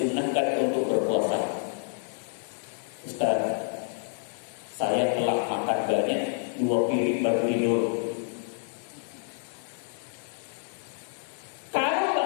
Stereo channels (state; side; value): silent; right; digital silence